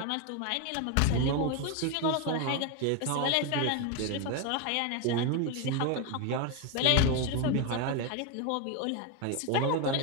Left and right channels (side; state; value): both; different; correlation 0.02